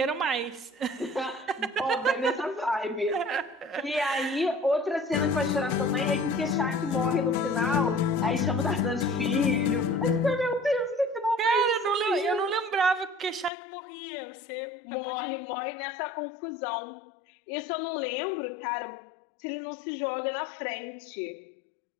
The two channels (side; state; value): right; drops out; at 13.5 s